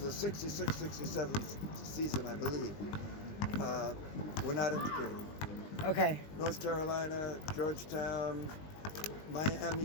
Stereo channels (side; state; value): right; late; 20 ms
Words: 66-67 season, I believe, were not integrated. Okay. North Carolina, Georgetown,